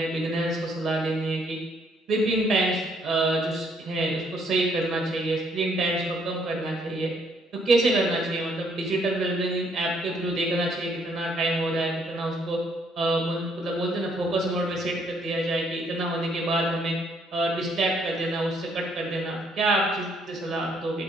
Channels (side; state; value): both; normal; correlation 0.68